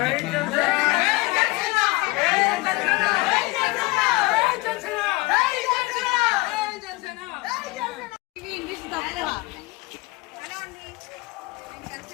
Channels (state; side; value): quieter; right; 22.8 dB